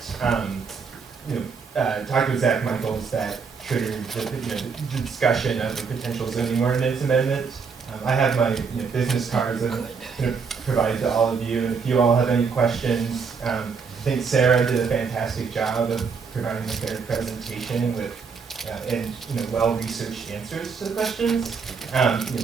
talked with Zach Michaels that triggered the discussion of a potential zoning ordinance amendment. I have my business cards that I'm going to provide to all of you, and if you all have any questions, I think Sarah did a fantastic job of providing a fair presentation with and well-researched answers to the questions.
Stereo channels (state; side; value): quieter; left; 5.5 dB